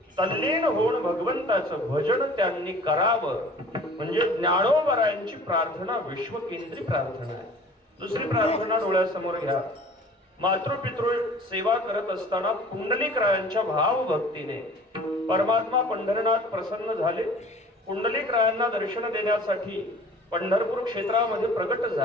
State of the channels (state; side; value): normal; both; correlation 0.47